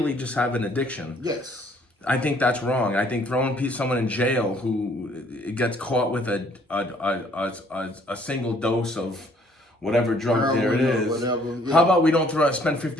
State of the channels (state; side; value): normal; both; correlation 0.62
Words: just have an addiction. Yes. I think that's wrong. I think throwing someone in jail who gets caught with a single dose of whatever drug there it is. Whatever, yeah. How about we don't spend